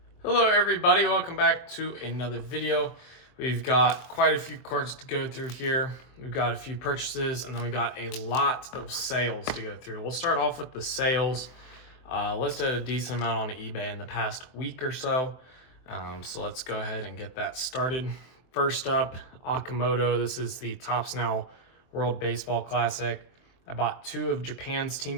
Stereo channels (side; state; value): right; late; 23 ms